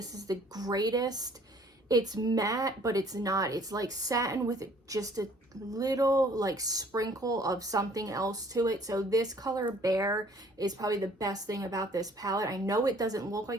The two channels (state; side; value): normal; both; correlation 0.57